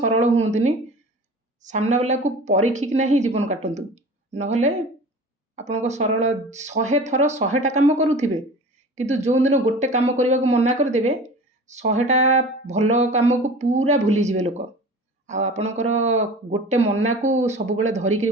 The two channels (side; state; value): both; normal; correlation 0.39